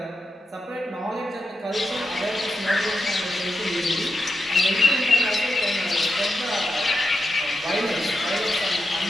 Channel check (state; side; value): normal; both; correlation 0.86